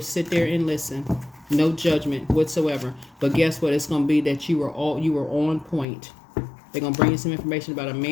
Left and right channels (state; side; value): drops out; right; at 5.9 s